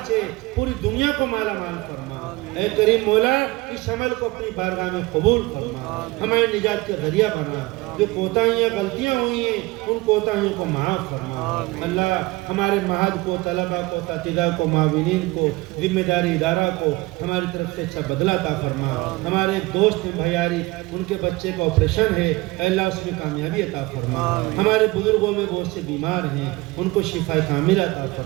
سے پوری دنیا کو مالا مال فرما. اے کریم مولا, اس عمل کو اپنی بارگاہ میں قبول فرما, ہمارے نجات کے ذریعہ بنا. جو کوتاہیاں غلطیاں ہوئی ہیں ان کوتاہیوں کو معاف فرما. اللہ ہمارے معہد کو, طلبہ کو, اساتذہ کو, معاونین کو, ذمہ داری ادارہ کو ہماری طرف سے اچھا بدلہ عطا فرما. ہمارے دوست بھیاری, ان کے بچے کا آپریشن ہے, اے اللہ اس میں کامیابی عطا فرما. ہمارے بزرگوں میں بہت سے بیمار ہیں, ان کو شفا کاملہ عطا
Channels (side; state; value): left; quieter; 21.7 dB